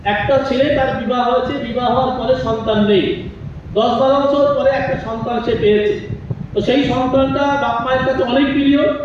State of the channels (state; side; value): identical; both; correlation 1.00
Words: একটা ছেলে, তার বিবাহ হয়েছে, বিবাহ হওয়ার পরে সন্তান নেই, 10-12 বছর পরে একটা সন্তান সে পেয়েছে। তো সেই সন্তানটা বাপ মায়ের কাছে অনেক প্রিয়।